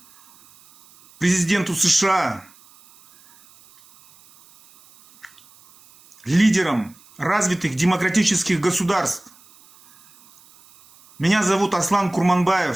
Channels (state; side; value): noise; right; hiss, 28 dB below the sound